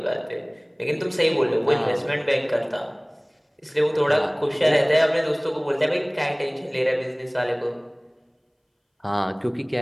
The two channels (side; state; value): both; identical; correlation 1.00